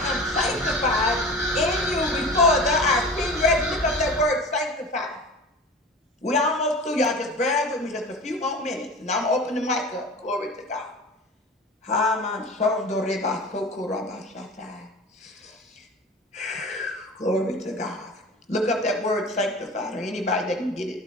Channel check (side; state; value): both; normal; correlation 0.36